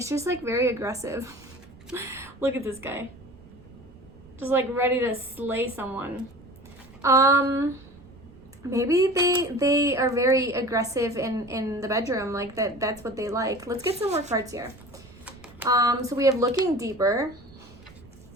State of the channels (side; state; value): right; noise; rumble, 23 dB below the sound